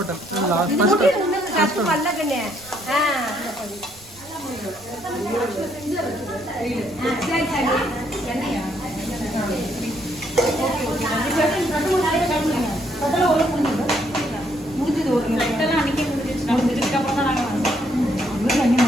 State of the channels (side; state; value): right; noise; rumble, 24 dB below the sound